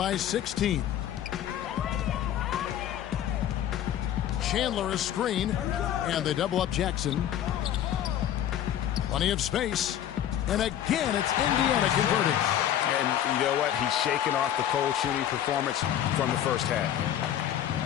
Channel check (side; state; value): right; quieter; 10.9 dB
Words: 16. Chandler a screen, and they double up Jackson. Plenty of space, and again it's Indiana converting. And you know what? He's shaking off the cold shooting performance from the first half.